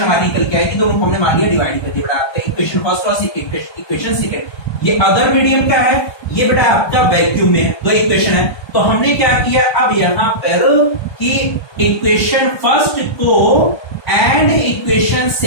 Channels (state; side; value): late; right; 1.3 ms